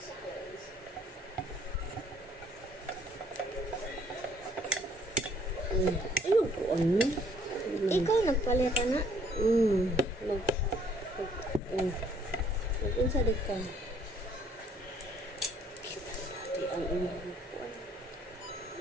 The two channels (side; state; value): both; normal; correlation 0.62